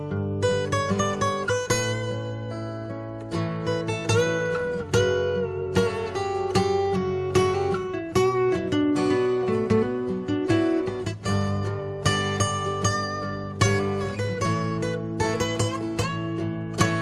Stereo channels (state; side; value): identical; both; correlation 1.00